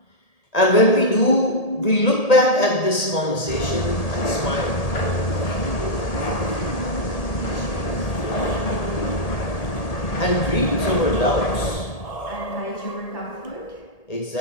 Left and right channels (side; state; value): right; late; 1.8 ms